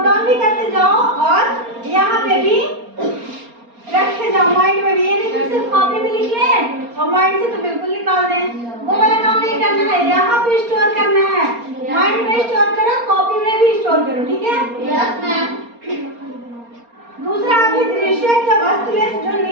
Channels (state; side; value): late; left; 4.3 ms